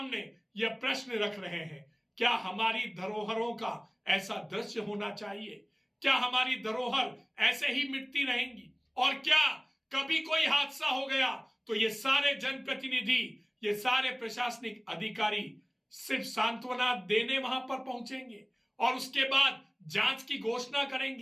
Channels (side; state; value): both; identical; correlation 1.00